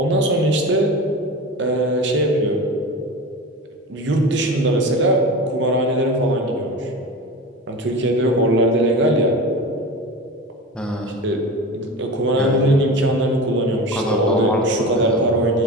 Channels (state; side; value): normal; both; correlation 0.30